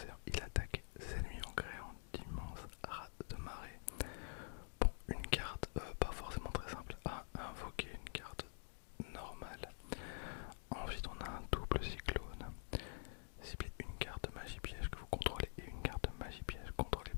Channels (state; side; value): silent; right; digital silence